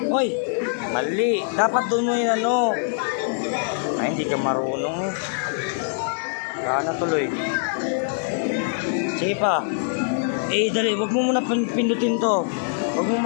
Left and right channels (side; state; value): right; silent; 63 dB below the other